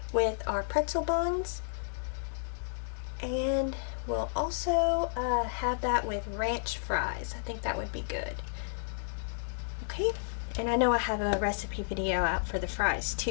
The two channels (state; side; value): silent; right; digital silence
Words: with our pretzel buns, and we'll also have that with ranch fries. I think that would be good. Okay, and I know I have a recipe video out for the fries